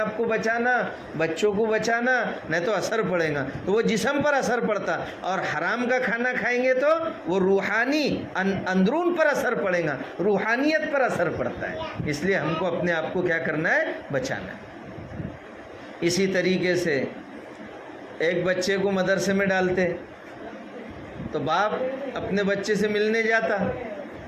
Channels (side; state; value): both; identical; correlation 1.00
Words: کو بچانا، بچوں کو بچانا، نہیں تو اثر پڑے گا۔ تو وہ جسم پر اثر پڑتا، اور حرام کا کھانا کھائیں گے تو وہ روحانی اندرون پر اثر پڑے گا، روحانیت پر اثر پڑتا ہے۔ اس لیے ہم کو اپنے آپ کو کیا کرنا ہے؟ بچانا ہے۔ اسی طریقے سے ایک بچے کو مدرسے میں ڈالتے تو باپ اپنے بچے سے ملنے جاتا،